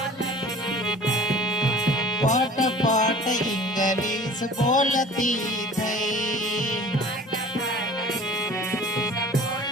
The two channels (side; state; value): both; normal; correlation 0.44